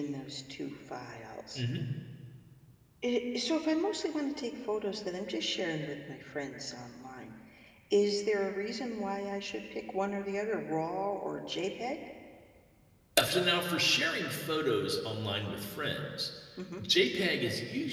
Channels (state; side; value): identical; both; correlation 1.00